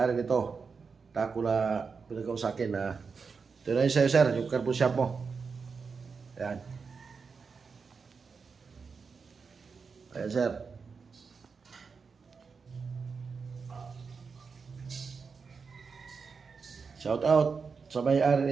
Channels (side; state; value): left; quieter; 5.2 dB